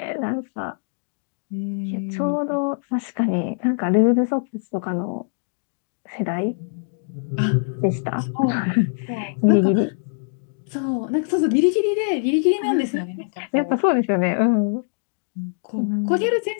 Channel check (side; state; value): right; silent; digital silence